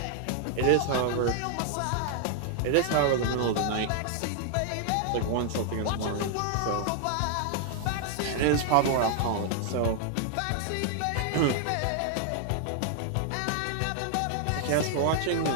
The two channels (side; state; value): both; different; correlation 0.00